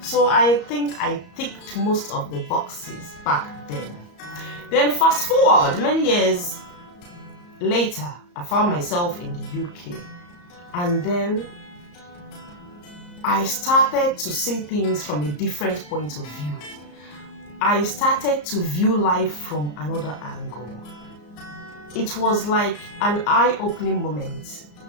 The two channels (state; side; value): late; right; 34 ms